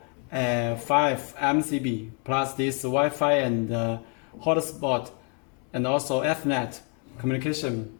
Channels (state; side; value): quieter; right; 39.1 dB